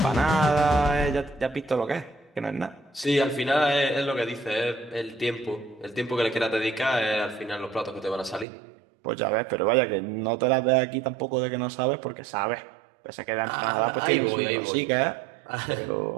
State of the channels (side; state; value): left; drops out; at 8.5 s